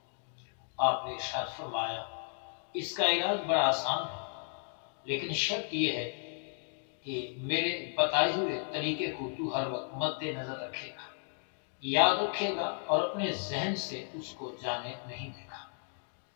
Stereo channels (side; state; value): right; silent; 55 dB below the other